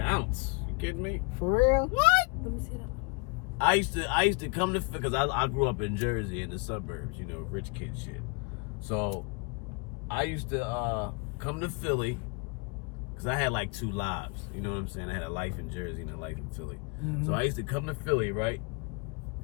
ounce. You kidding me? For real? What? Let me see that. I used to come to, because I grew up in Jersey in the suburbs, you know, rich kid shit. So I used to come to Philly because I had like 2 lives. You know what I'm saying? I had a life in Jersey and a life in Philly. So I used to come to Philly, right?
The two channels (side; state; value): right; quieter; 29.2 dB